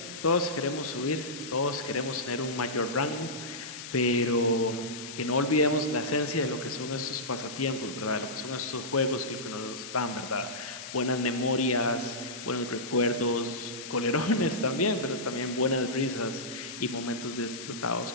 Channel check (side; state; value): left; noise; hiss, 10 dB below the sound